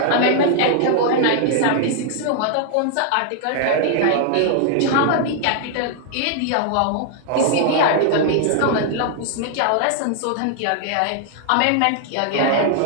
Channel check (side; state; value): both; different; correlation 0.00